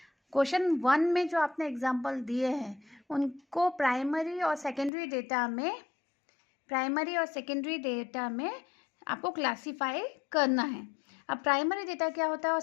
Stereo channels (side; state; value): right; drops out; at 4.9 s